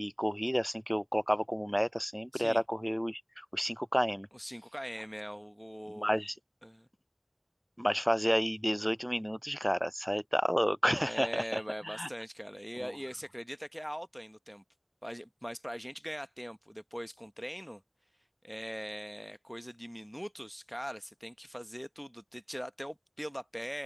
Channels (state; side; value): identical; both; correlation 1.00